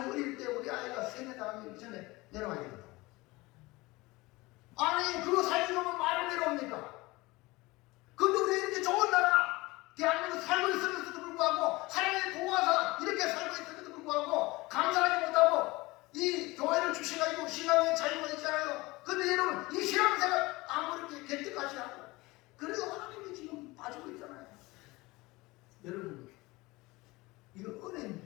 어릴 때 우리 아이가 세뇌 당하기 전에 내려와야 된다. 아니, 그거 살려면 말을 내려옵니까? 근데 우리 이렇게 좋은 나라, 대한민국 살고 있으면서도 불구하고, 하나님의 보호하사 이렇게 살고 있음에도 불구하고, 감사하지 못하고, 이 교회를 주셔가지고 신앙의 자유가 있잖아요. 근데 여러분, 이 신앙생활 아무리 개떡같이 하고, 그래도 하나님이 지금 빠지고 있잖아요. 여러분, 이거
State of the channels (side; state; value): right; quieter; 21.7 dB